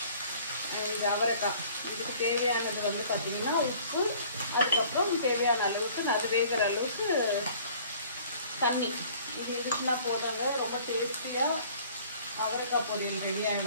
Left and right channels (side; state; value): both; inverted; correlation -0.52